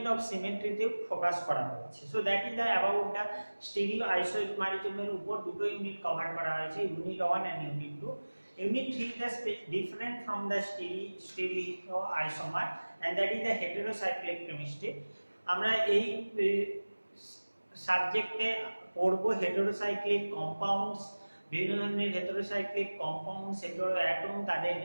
of symmetry তে ফোকাস করা হয়েছে। So that is the about the stereo আইসোমারিজমের উপর দুটো ইউনিট কভার করা হয়েছে, unit 1 and unit 2। Unit 3 is different from the stereoisomer and that is the heterocyclic chemistry. আমরা এই সাবজেক্টে পড়ব হেটেরোসাইক্লিক কম্পাউন্ডস, বিভিন্ন ধরনের হেটেরোসাইক্লিক কম্পাউন্ডস, হেটেরো অ্যাটম, তাদের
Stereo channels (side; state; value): both; inverted; correlation -1.00